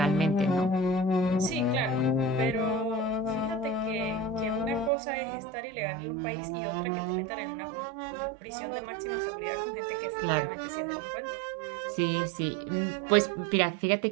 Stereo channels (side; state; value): left; drops out; at 4.9 s